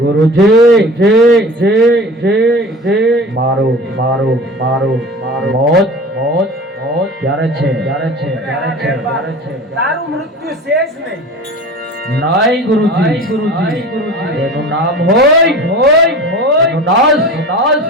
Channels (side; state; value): both; normal; correlation 0.37